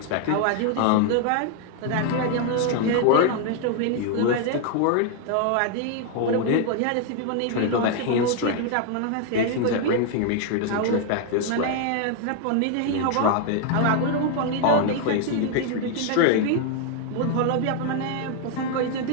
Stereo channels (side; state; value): both; different; correlation 0.00